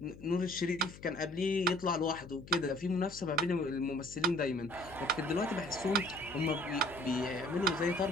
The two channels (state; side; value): noise; left; hum, 18 dB below the sound